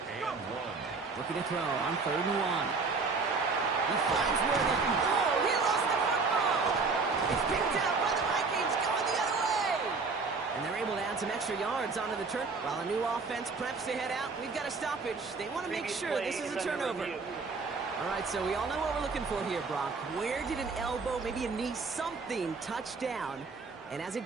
1. Looking to throw on third and 1. He finds Worthing. Oh, he lost the football. It's picked up by the Vikings going the other way. And they're able to add some extra yards onto the turn. While a new offense preps to head out, we've got a stoppage. They want to make sure this is a turnover. All right, so we all know what we're looking for here, Brock. Where did an elbow, maybe a knee, something touch down? And as it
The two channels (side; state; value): left; quieter; 4.4 dB